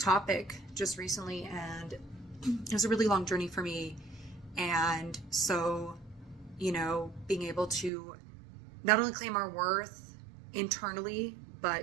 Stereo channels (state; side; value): drops out; left; at 7.9 s